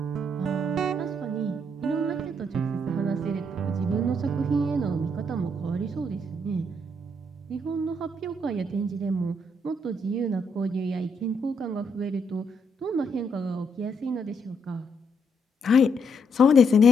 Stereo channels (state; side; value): normal; both; correlation 0.74